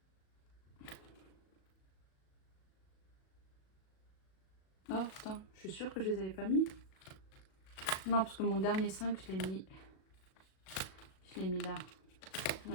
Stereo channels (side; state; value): right; late; 37 ms